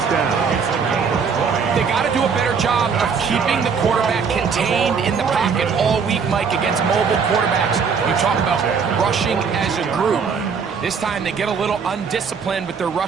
down. They got to do a better job of keeping the quarterback contained in the pocket all week, Mike, against mobile quarterbacks. You talk about rushing as a group. This time they get a little undisciplined with their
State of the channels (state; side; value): quieter; left; 6.0 dB